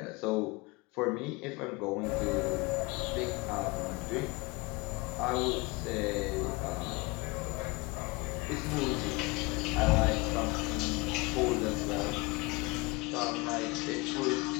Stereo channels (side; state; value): right; quieter; 25.2 dB